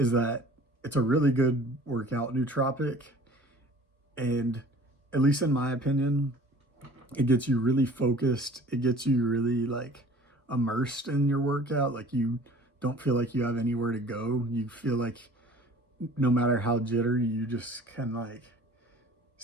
that it's a really good workout nootropic, and at least in my opinion, it gets you really focused. It gets you really like immersed in your workout. Like, you don't feel like you have anywhere to go. You feel like no matter how jittery, you just can like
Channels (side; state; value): both; normal; correlation 0.48